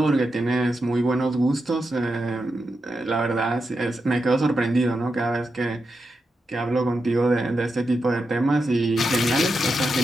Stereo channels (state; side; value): normal; both; correlation 0.87